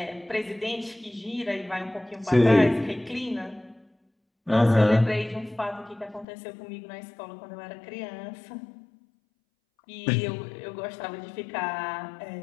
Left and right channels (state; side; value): drops out; right; at 6.2 s